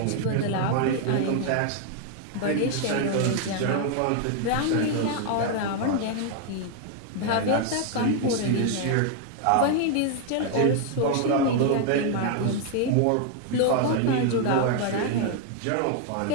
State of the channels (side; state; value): both; different; correlation 0.00